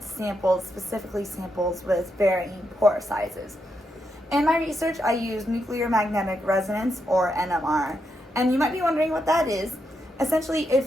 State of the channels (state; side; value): normal; both; correlation 0.82